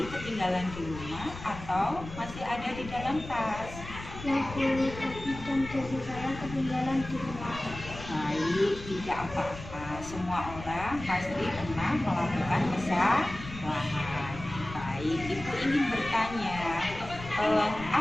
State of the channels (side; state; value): left; noise; rumble, 12 dB below the sound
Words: ketinggalan di rumah atau masih ada di dalam tas? Ya Bu, topi dan dasi saya ketinggalan di rumah. Baik, tidak apa-apa. Semua orang pasti pernah melakukan kesalahan. Baik, Ibu ingin bertanya,